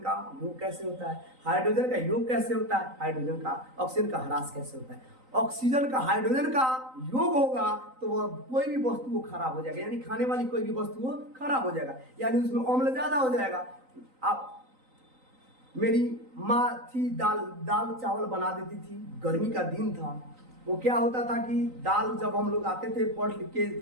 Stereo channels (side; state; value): left; late; 3.9 ms